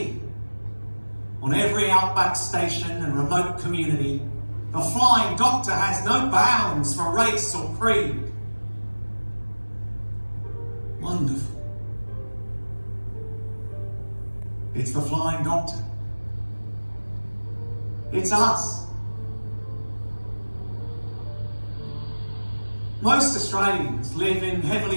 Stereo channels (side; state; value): both; inverted; correlation -1.00